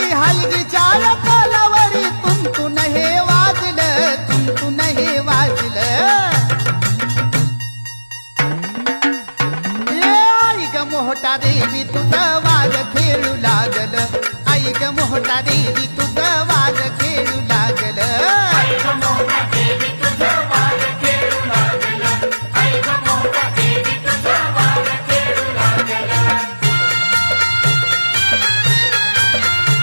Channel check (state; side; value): inverted; both; correlation -1.00